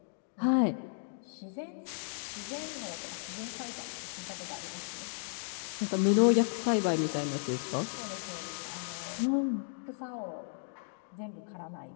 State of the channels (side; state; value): right; silent; digital silence